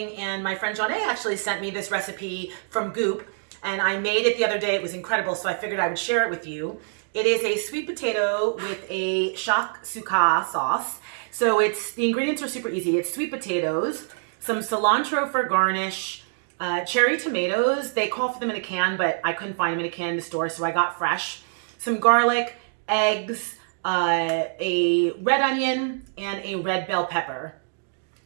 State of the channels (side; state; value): left; silent; digital silence